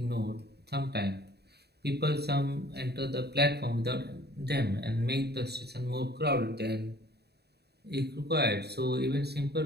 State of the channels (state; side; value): late; left; 0.48 ms